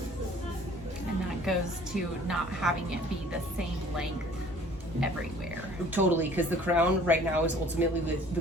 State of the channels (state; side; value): normal; both; correlation 0.52